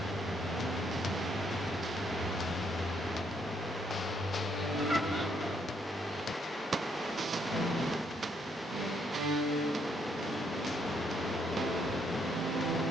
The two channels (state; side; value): normal; both; correlation 0.72